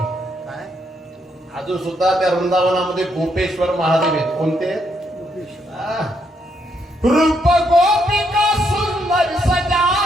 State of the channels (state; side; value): normal; both; correlation 0.75